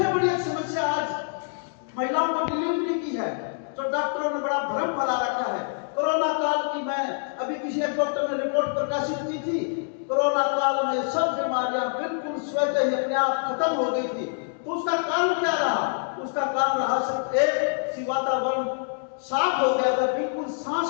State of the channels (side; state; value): right; silent; digital silence